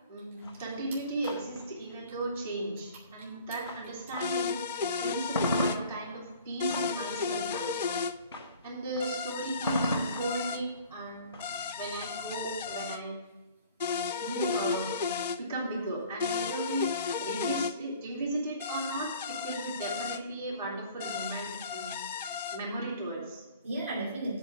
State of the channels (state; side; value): inverted; both; correlation -0.50